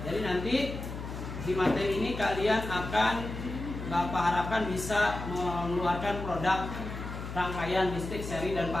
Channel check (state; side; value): noise; left; hum, 8 dB below the sound